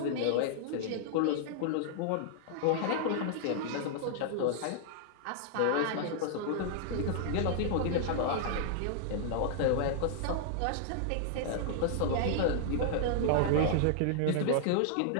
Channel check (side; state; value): both; different; correlation -0.01